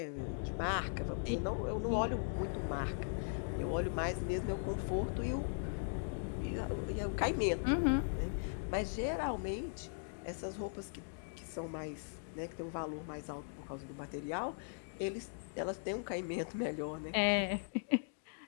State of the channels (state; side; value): silent; right; digital silence